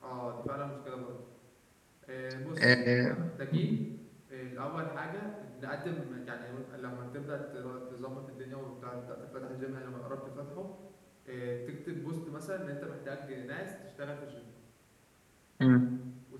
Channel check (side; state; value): both; identical; correlation 1.00